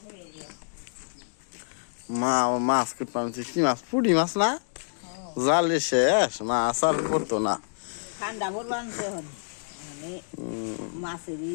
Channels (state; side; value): silent; right; digital silence